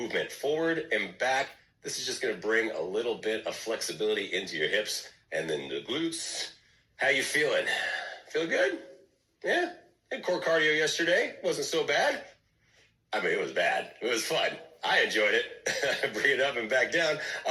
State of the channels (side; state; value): both; identical; correlation 1.00